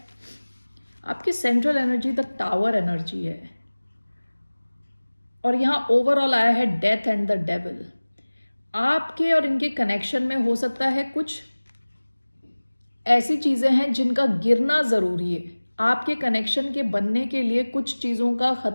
आपकी central energy the tower energy है और यहाँ ओवरऑल आया है डेथ एंड द डेविल। आपके और इनके कनेक्शन में हो सकता है कुछ ऐसी चीजें हैं जिनका गिरना जरूरी है। आपके कनेक्शन के बनने के लिए कुछ चीजों का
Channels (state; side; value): inverted; both; correlation -1.00